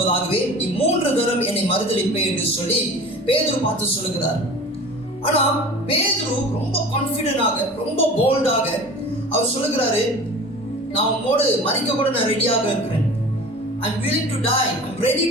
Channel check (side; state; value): both; normal; correlation 0.39